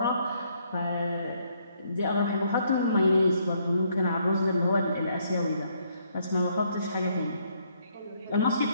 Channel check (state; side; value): inverted; both; correlation -0.70